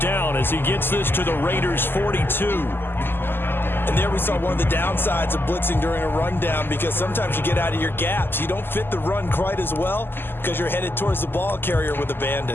down as he gets this to the Raiders' 42. And there we saw one of the downsides of blitzing during a rundown because sometimes you get out of your gaps. You don't fit the run quite as well because you're headed towards the ball carrier with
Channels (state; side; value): late; right; 0.10 ms